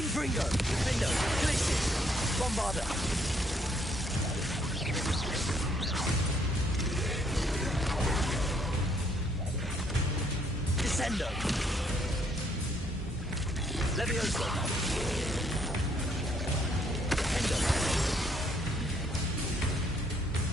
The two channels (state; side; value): normal; both; correlation 0.68